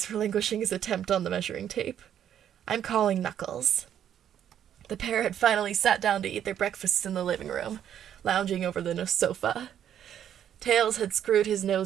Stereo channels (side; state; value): left; quieter; 9.9 dB